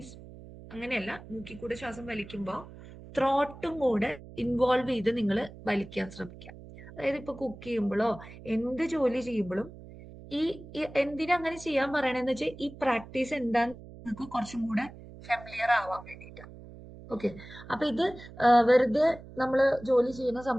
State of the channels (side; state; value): right; noise; hum, 17 dB below the sound